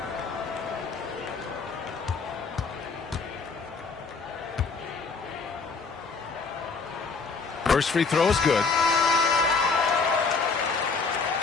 First free throw is good.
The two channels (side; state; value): right; quieter; 4.7 dB